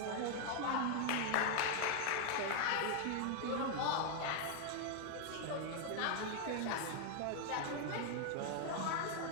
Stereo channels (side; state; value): both; different; correlation 0.00